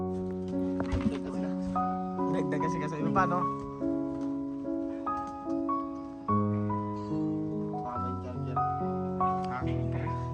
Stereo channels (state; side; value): identical; both; correlation 1.00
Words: Dagdag kasi kasi iba pa, no? Tama yung charger. Ha?